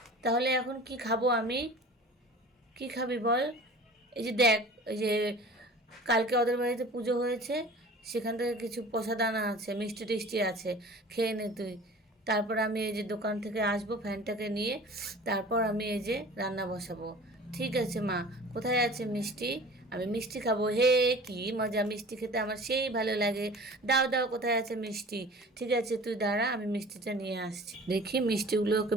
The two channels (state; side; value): normal; both; correlation 0.43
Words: তাহলে এখন কি খাবো আমি? কি খাবি বল? এই যে দেখ, এই যে কালকে ওদের বাড়িতে পুজো হয়েছে, সেখান থেকে কিছু প্রসাদ আনা আছে, মিষ্টি টিষ্টি আছে, খেয়ে নে তুই। তারপর আমি এই যে দোকান থেকে আসবো ফ্যানটাকে নিয়ে, তারপর আমি এই যে রান্না বসাবো। ঠিক আছে মা, কোথায় আছে মিষ্টি? আমি মিষ্টি খাবো। হে কি মজা, মিষ্টি খেতে আমার সেই ভালো লাগে। দাও দাও, কোথায় আছে মিষ্টি? ঠিক আছে তুই দাঁড়া, আমি মিষ্টিটা নিয়ে আসছি। দেখি মিষ্টিগুলো ওকে